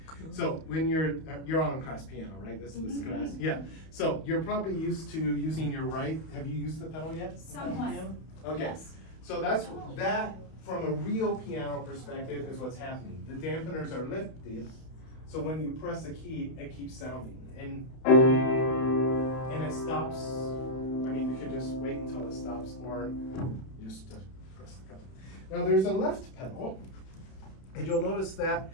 So when you're on class piano, right? This is this class, yeah. So you're probably used to using your right. Have you used the pedal yet? Somewhat. Okay. Yes. So that from a real piano perspective is what's happening. The dampeners are lifted, so when you press a key, it keeps sounding, and it stops. I mean, you could just wait until it stops, or you just press the pedal. Now there's a left pedal, and you'll notice that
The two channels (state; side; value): late; right; 31 ms